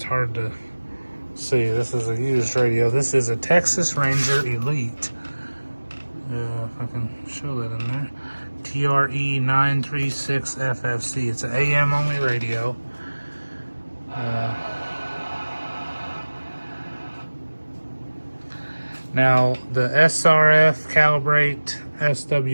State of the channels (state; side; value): inverted; both; correlation -1.00